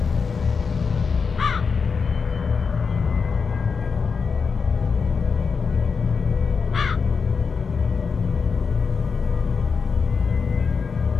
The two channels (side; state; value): right; quieter; 5.4 dB